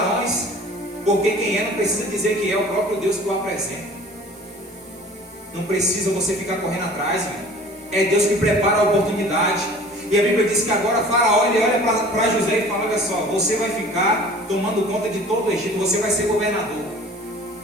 Porque quem é não precisa dizer que é, o próprio Deus que o apresenta. Não precisa você ficar correndo atrás, irmão. É Deus que prepara a oportunidade. E a Bíblia diz que agora Faraó, ele olha para José e fala: olha só, você vai ficar tomando conta de todo o Egito, você vai ser governador.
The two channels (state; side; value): normal; both; correlation 0.46